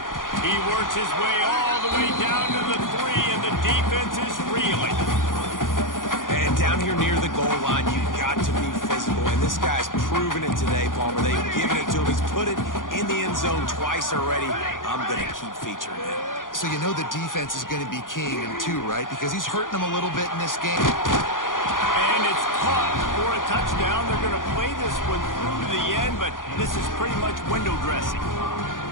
He works his way all the way down to the 3, and the defense is reeling. And down here near the goal line, you got to be physical, and this guy's proven it today, Palmer. They've given it to him. He's put it in the end zone twice already. I'm going to keep featuring him. So you know the defense is going to be keying him too, right? Because he's hurting them a little bit in this game. And it's caught for a touchdown. They're going to play this one through to the end, but this is pretty much window dressing.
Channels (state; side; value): late; right; 0.89 ms